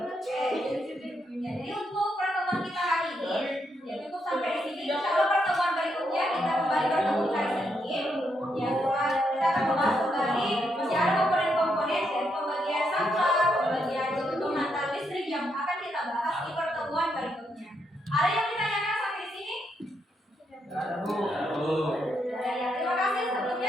Ya, jadi untuk pertemuan kita hari ini ya cukup sampai di sini. Insya Allah pertemuan berikutnya kita kembali bertemu hari ini. Ya, kita akan membahas kembali masih ada komponen-komponen dari pembagian sampah, pembagian penata listrik yang akan kita bahas di pertemuan berikutnya. Ada yang ditanyakan sampai di sini? Ya, terima kasih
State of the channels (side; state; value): both; normal; correlation 0.79